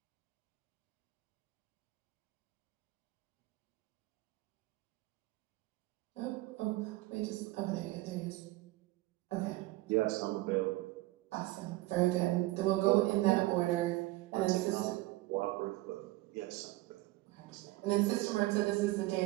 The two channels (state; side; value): quieter; left; 19.1 dB